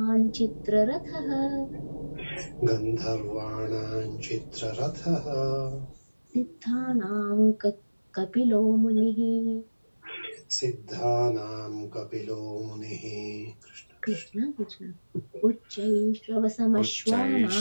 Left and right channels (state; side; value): inverted; both; correlation -1.00